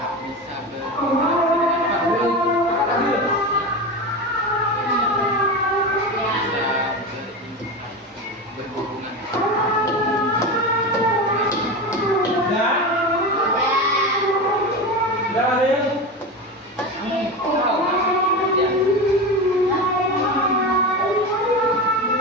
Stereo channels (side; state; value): both; normal; correlation 0.23